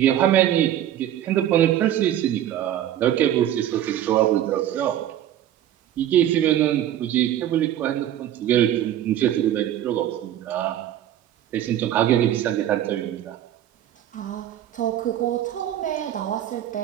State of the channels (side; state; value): left; quieter; 11.6 dB